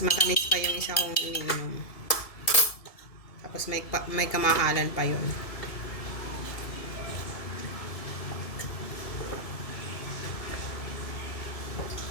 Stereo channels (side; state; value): right; late; 1.7 ms